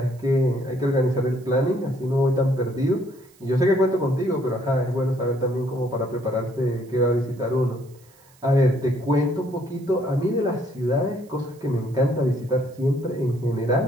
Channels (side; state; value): right; noise; hiss, 29 dB below the sound